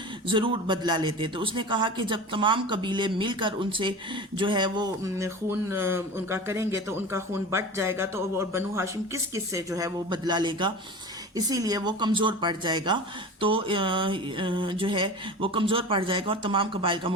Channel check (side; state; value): both; normal; correlation 0.33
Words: ضرور بدلہ لیتے۔ تو اس نے کہا کہ جب تمام قبیلے مل کر ان سے جو ہے وہ خون ان کا کریں گے تو ان کا خون بٹ جائے گا، تو بنو ہاشم کس کس سے جو ہے وہ بدلہ لے گا، اسی لیے وہ کمزور پڑ جائے گا، تو جو ہے وہ کمزور پڑ جائے گا اور تمام قبائل کا